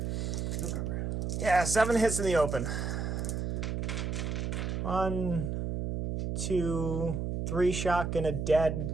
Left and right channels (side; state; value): right; noise; hum, 2 dB below the sound